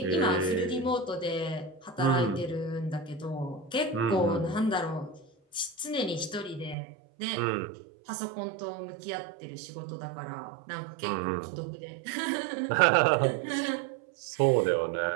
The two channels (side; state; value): left; drops out; at 6.8 s